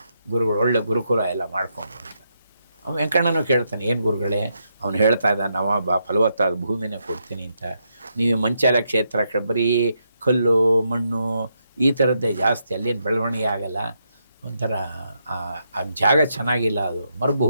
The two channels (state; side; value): inverted; both; correlation -0.80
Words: ಗುರುಗಳು, ಒಳ್ಳೆ ಗುರುಕುಲ ಎಲ್ಲ ಮಾಡ್ಕೊಂಡು ಅಂತ. ಅವನು ವೆಂಕಣ್ಣನೂ ಕೇಳ್ತಾನೆ, ಏನು ಗುರುಗಳೇ, ಅವನು ಹೇಳ್ತಾ ಇದ್ದ ನವಾಬ ಫಲವತ್ತಾದ ಭೂಮಿನೇ ಕೊಡ್ತೀನಿ ಅಂತ, ನೀವು ಮಂಚಾಲ ಕ್ಷೇತ್ರ ಬರೀ ಕಲ್ಲು ಮಣ್ಣು ಈ ಥರದ್ದೇ ಜಾಸ್ತಿ, ಅಲ್ಲೇನು ಬೆಳವಣಿಗೆ ಆಗಲ್ಲ, ಒಂಥರ ಆ ಜಾಗ ಚೆನ್ನಾಗಿಲ್ಲ, ಅದು